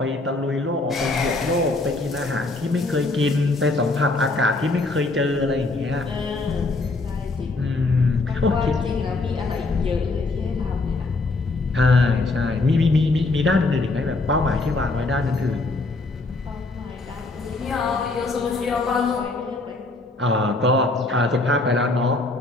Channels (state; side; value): quieter; right; 3.2 dB